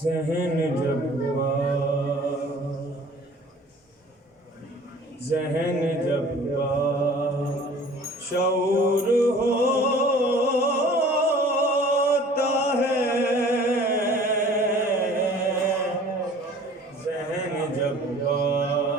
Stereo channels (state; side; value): normal; both; correlation 0.49